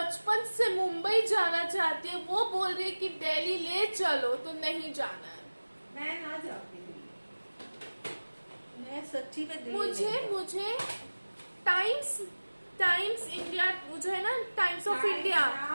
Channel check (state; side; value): inverted; both; correlation -1.00